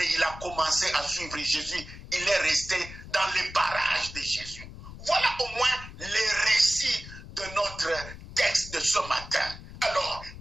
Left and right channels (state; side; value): noise; left; rumble, 14 dB below the sound